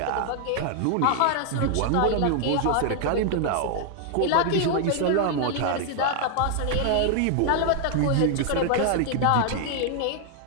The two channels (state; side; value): different; both; correlation 0.00